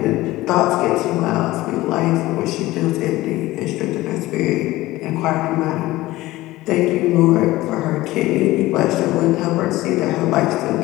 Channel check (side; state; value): right; quieter; 17.8 dB